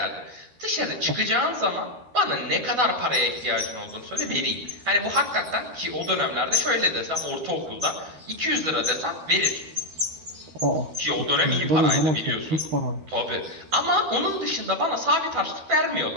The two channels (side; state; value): left; late; 13 ms